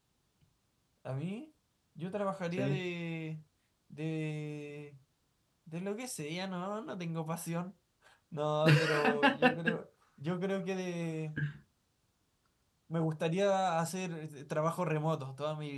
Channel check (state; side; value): identical; both; correlation 1.00